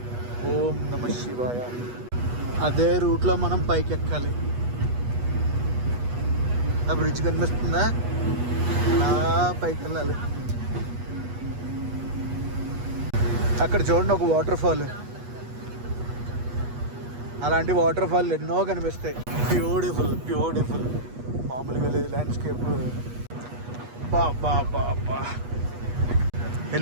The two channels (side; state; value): left; late; 8.3 ms